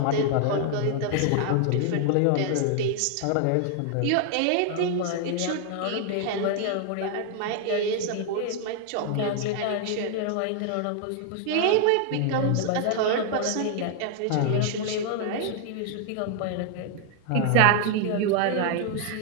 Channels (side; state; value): both; different; correlation 0.00